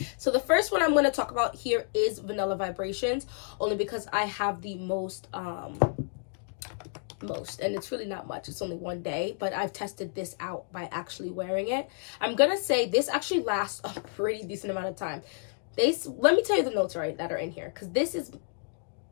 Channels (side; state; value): right; silent; 56 dB below the other